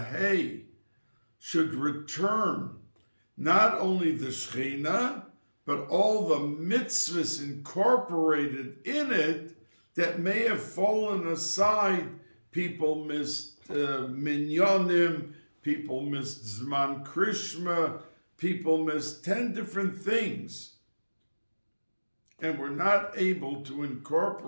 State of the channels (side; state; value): both; inverted; correlation -1.00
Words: hay should return not only the Shechina, but all the mitzvahs incorporated in it that may have fallen aside. People missed minyanim, people missed Zman Krishma, people missed 10 different things. And we're not able to